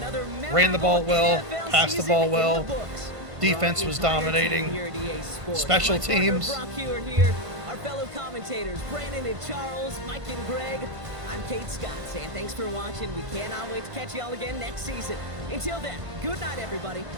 Ran the ball well, NFL passed the season ball in well. the books. Defense Our was entire team dominating. here at EA Sports. Special My partner teams. Brock Hewitt here. our fellow commentators, Brandon and Charles, Mike and Greg. I'm Kate Scott saying thanks for watching. We cannot wait to catch y'all again next season. Until then, good night, everybody.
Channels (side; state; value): left; late; 1.5 ms